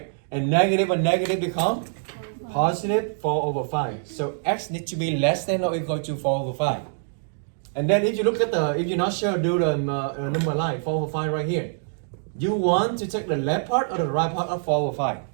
And negative become positive 4 over 5. So x needs to be less than or equal to 4 over 5. And then if you look at if you're not sure, do the number line, 4 over 5 right here. You want to take the left part or the right part of 4 over 5?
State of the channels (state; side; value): silent; left; digital silence